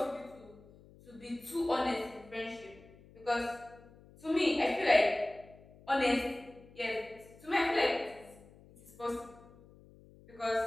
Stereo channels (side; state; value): left; noise; hum, 23 dB below the sound